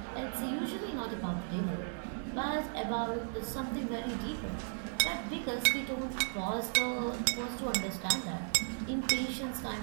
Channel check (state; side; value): silent; left; 54 dB below the other